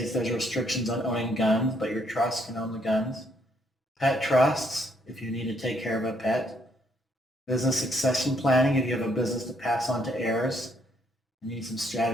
there's restrictions on owning guns, but your trust can own the guns. Pet trusts, if you need to take care of a pet. Business succession planning, if you have a business to pass on to heirs. You need some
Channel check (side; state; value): both; normal; correlation 0.71